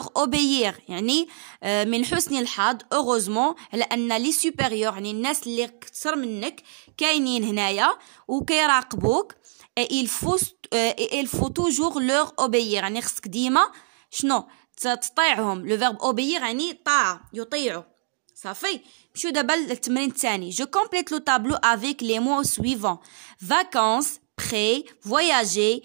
obéir يعني من حسن الحظ heureusement على ان لي supérieurs يعني الناس اللي كثر منك كاينين هنايا وكيراقبوك. il faut toujours leur obéir يعني خصك ديما شنو تطيعهم. لو فيرب اوبيير يعني طاعة، يطيعوا. صافي. نمشيو دابا للتمرين الثاني. جو كومبليت لو تابلو افيك لي مو سويفون: vacances, prêt, voyager,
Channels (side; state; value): left; silent; 62 dB below the other